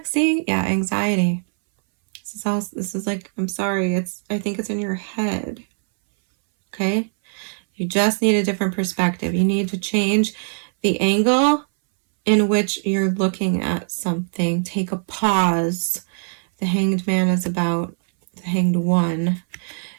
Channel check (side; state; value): left; silent; 63 dB below the other